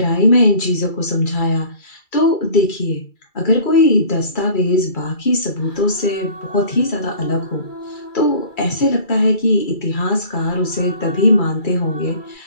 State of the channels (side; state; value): right; late; 2.3 ms